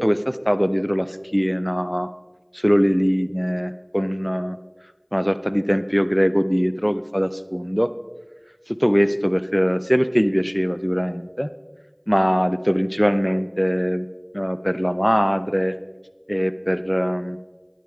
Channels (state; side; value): identical; both; correlation 1.00